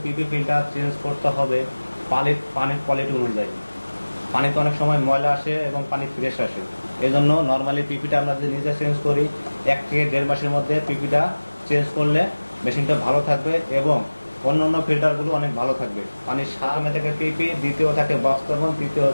PP filter change করতে হবে পানির কোয়ালিটি অনুযায়ী। পানিতে অনেক সময় ময়লা আসে এবং পানি ফ্রেশ আসে, এই জন্য নর্মালি পিপিটা আমরা যদি নিজে চেঞ্জ করি 1 থেকে 1.5 মাসের মধ্যে পিপিটা চেঞ্জ করলে মেশিনটা ভালো থাকবে এবং অন্যান্য ফিল্টারগুলো অনেক ভালো থাকবে। পানির সামনে থেকে পিপি, দ্বিতীয় থাকে বক্স কার্বন, তৃতীয়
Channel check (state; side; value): inverted; both; correlation -1.00